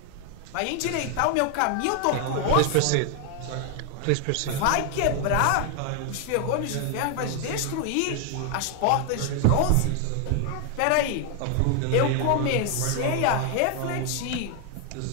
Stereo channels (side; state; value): both; different; correlation 0.00